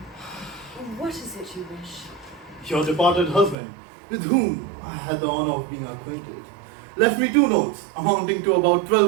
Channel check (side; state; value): left; drops out; at 3.6 s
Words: What is it you wish? Your departed husband, with whom I had the honor of being acquainted, left me 2 notes amounting to about